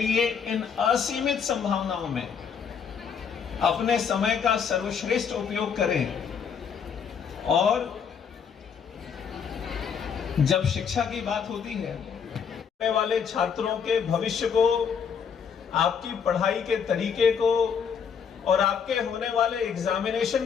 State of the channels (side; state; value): right; quieter; 6.9 dB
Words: इन असीमित संभावनाओं में अपने समय का सर्वश्रेष्ठ उपयोग करें। और जब शिक्षा की बात होती है, आने वाले छात्रों के भविष्य को, आपकी पढ़ाई के तरीके को और आपके होने वाले